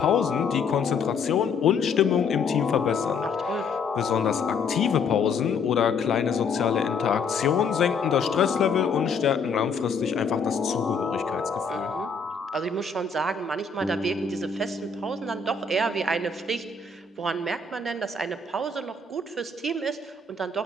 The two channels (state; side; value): quieter; right; 4.7 dB